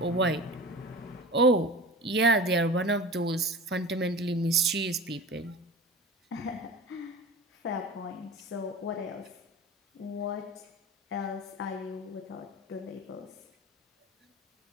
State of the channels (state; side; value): normal; both; correlation 0.34